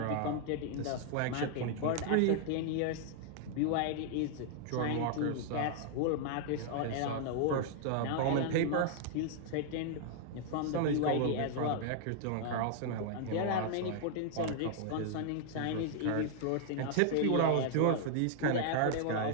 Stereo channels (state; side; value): different; both; correlation 0.00